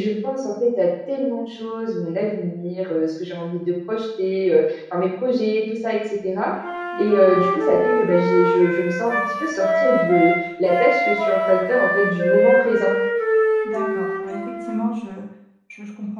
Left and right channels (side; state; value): both; identical; correlation 1.00